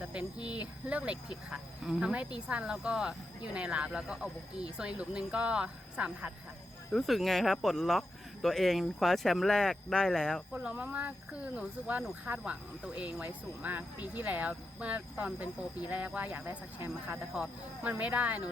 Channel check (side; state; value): both; normal; correlation 0.86